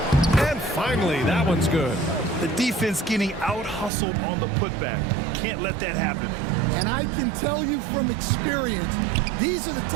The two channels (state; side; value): drops out; left; at 3.9 s